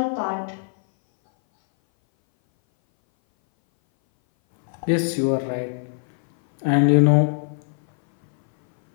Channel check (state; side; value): silent; right; 60 dB below the other